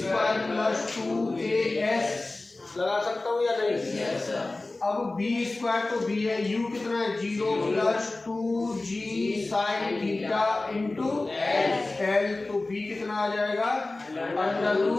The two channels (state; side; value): quieter; right; 3.1 dB